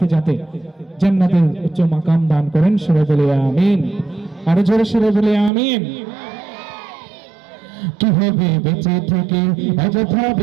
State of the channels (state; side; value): drops out; left; at 5.5 s